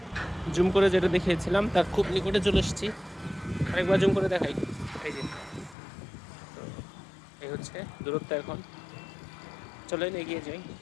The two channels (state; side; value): drops out; right; at 5.8 s